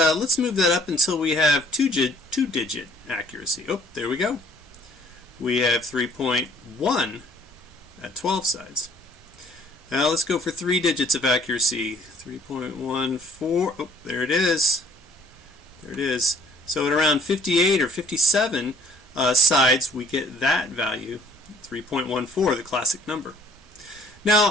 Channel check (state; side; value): normal; both; correlation 0.59